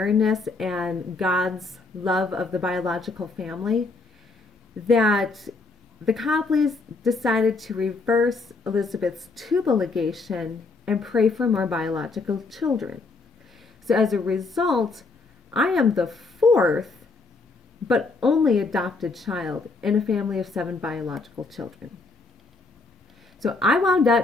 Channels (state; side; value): quieter; right; 3.8 dB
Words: and God's love of the biological family, that the Copleys decided to reverse Elizabeth's tubal ligation and pray for more biological children. So as a result, I am the fourth, but only adopted child in a family of 7 biological children. So I wound